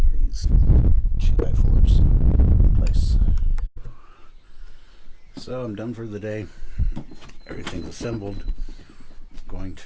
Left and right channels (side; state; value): both; identical; correlation 1.00